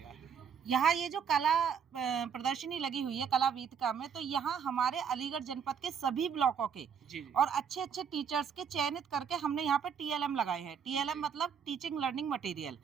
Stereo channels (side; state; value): left; quieter; 7.4 dB